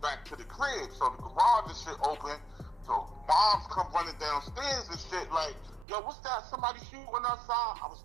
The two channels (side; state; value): left; drops out; at 5.9 s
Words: back to the crib. So the garage and shit open. So moms come running downstairs and shit like, yo, what's that? Somebody shooting outside? I was